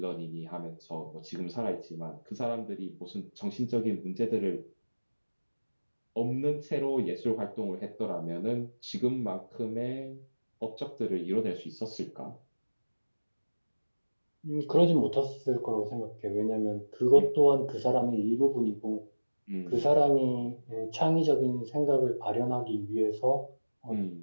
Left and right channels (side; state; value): both; inverted; correlation -1.00